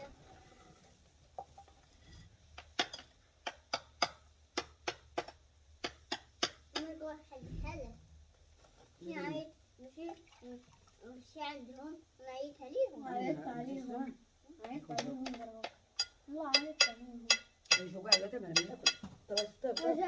ماشي عندهم نعيط عليهم والله عيطت عليهم يجوا كاع لا تمام ناكل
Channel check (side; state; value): both; identical; correlation 1.00